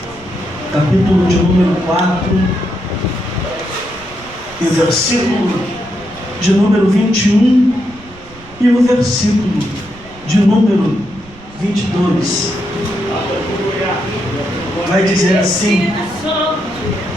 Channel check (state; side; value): noise; right; rumble, 22 dB below the sound